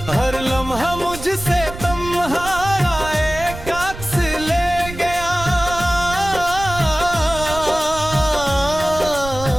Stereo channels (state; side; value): noise; right; rumble, 11 dB below the sound